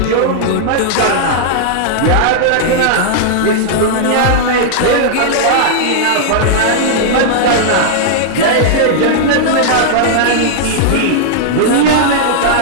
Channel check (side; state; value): both; different; correlation -0.01